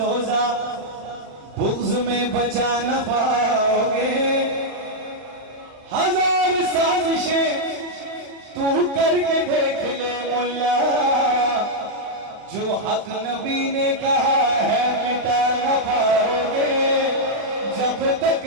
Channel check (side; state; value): left; late; 39 ms